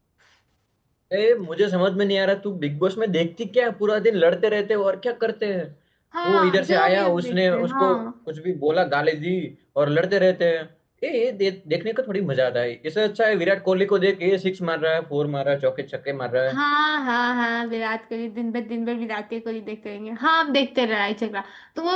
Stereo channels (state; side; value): identical; both; correlation 1.00